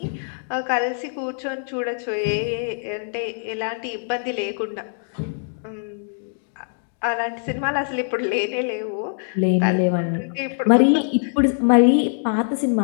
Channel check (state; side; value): silent; right; 63 dB below the other